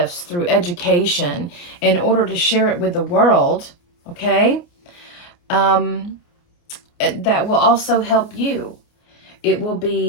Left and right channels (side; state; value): right; late; 29 ms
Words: through education in order to share it with the world. Okay, um, that will also help you. It will